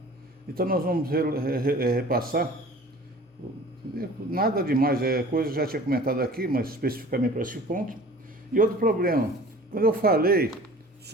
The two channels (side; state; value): both; normal; correlation 0.45